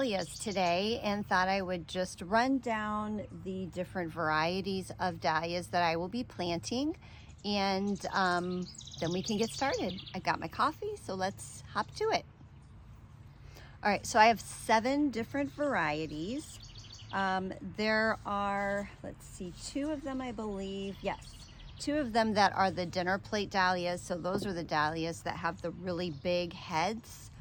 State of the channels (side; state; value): both; identical; correlation 1.00